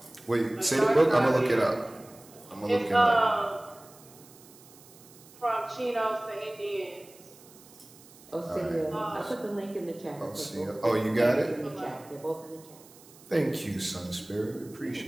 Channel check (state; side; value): noise; right; hiss, 23 dB below the sound